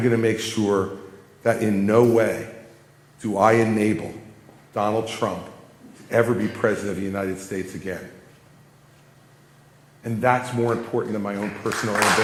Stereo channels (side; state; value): both; identical; correlation 1.00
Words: to make sure that in no way do I enable Donald Trump to ever be president of the United States again. And that's more important than my own personal